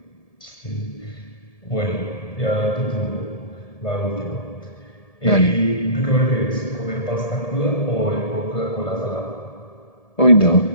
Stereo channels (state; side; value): late; right; 1.7 ms